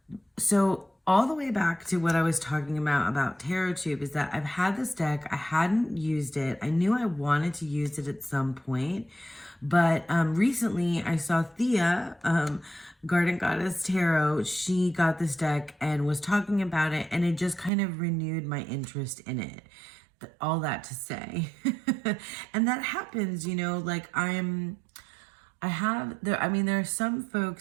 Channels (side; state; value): left; drops out; at 17.7 s